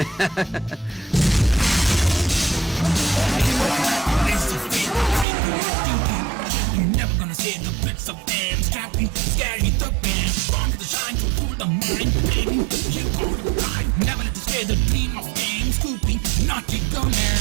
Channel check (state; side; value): drops out; left; at 5.2 s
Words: You're never gonna see the bits of them strapping, scary thugging, from the shine to pull the mind, baby. You gonna ride, never let you scare the dream of fame, scooping, naughty gunning.